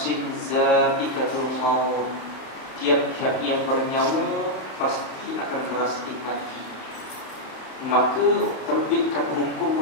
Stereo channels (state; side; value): late; right; 31 ms